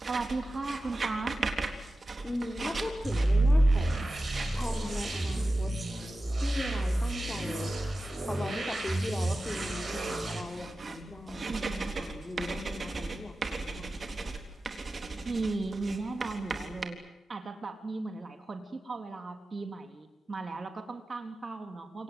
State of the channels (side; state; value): both; normal; correlation 0.94